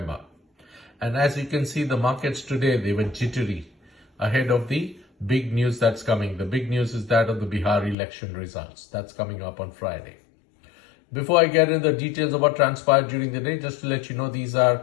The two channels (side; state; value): right; drops out; at 8.0 s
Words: And as you can see, the markets today, they were jittery ahead of the big news that's coming. The big news is that of the Bihar election results. That's coming up on Friday. Before I get into the details of what transpired during the day, just to let you know, these